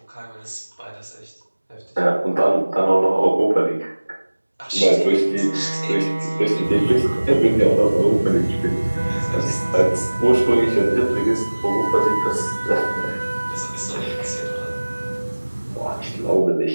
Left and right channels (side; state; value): both; inverted; correlation -1.00